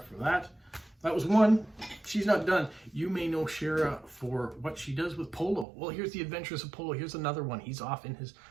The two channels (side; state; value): left; drops out; at 5.7 s